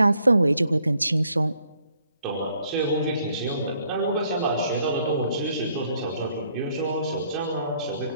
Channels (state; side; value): inverted; both; correlation -0.68